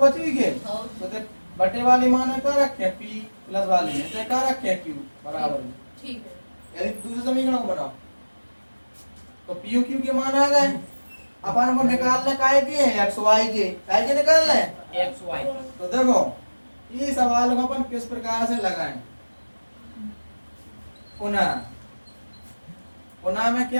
ही गए हो तो देख बटे वाले मानो क्या रखे p प्लस वाले में तो क्या रखे q बराबर ठीक है यदि दूसरे समीकरण को बनाओ तो p q के मान आ गए अपन को निकालने काहे के हैं x y के काहे के निकालने हैं एक्स वाई तो देखो ये सवाल को अपन किस प्रकार से लगाएं पुनः पुनः में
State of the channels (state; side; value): inverted; both; correlation -1.00